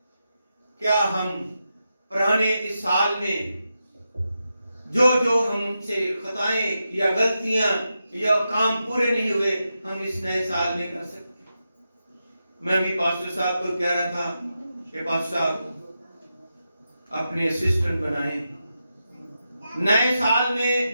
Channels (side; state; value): both; inverted; correlation -0.88